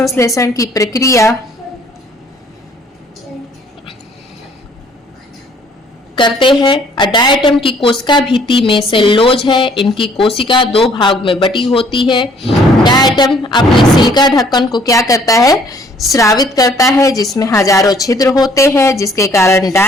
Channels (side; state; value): both; normal; correlation 0.60